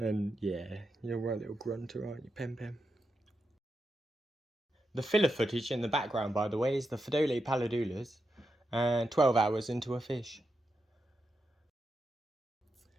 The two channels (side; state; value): both; normal; correlation 0.86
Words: yeah, you're a right little grunter, aren't you, Pem Pem? The filler footage in the background, by the way, is the Fedole Paladulas and 12 hours into a fish.